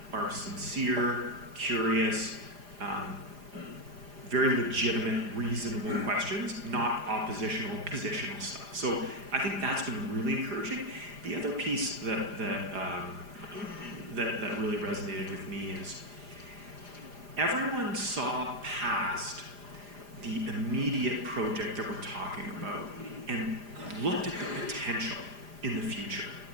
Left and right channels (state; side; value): late; left; 4.9 ms